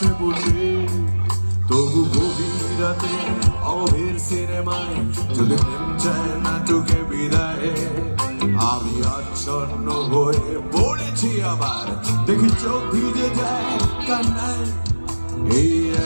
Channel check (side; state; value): both; inverted; correlation -1.00